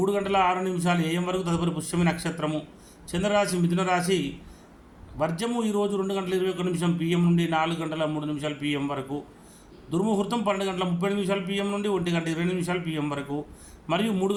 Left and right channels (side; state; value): both; identical; correlation 1.00